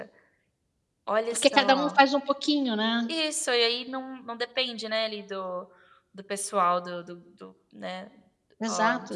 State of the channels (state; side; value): identical; both; correlation 1.00